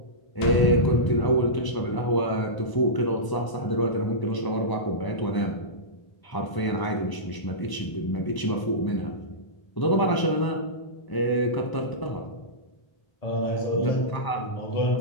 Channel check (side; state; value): right; late; 1.0 ms